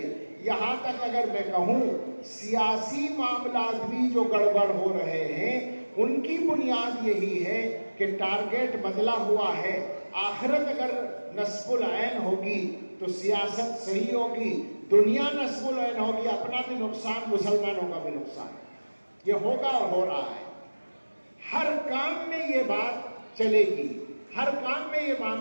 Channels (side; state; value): both; inverted; correlation -1.00